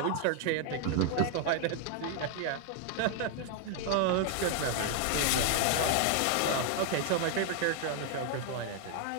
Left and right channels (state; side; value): different; both; correlation 0.00